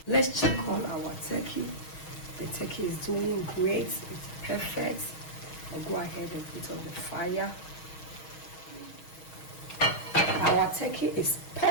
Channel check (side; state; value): right; late; 6.3 ms